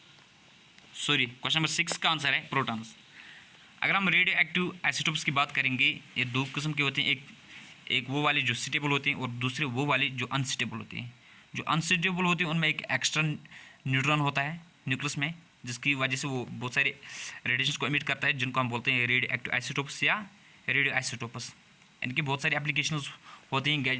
Sorry, question number 6 का answer है protons. अगर हम radio active isotopes की बात करेंगे, ये दो किस्म के होते हैं, एक वो वाले जो स्टेबल होते हैं और दूसरे वो वाले जो अनस्टेबल होते हैं। जो अनस्टेबल होते हैं उनमें एक एक्स्ट्रा न्यूट्रॉन होता है न्यूक्लियस में, जिसकी वजह से वो बहुत सारे रेडिएशंस को एमिट करता है, जिनको हम बोलते हैं रेडियो एक्टिव आइसोटोप्स या रेडियो आइसोटोपस। इनकी बहुत सारी एप्लीकेशंस होती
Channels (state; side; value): identical; both; correlation 1.00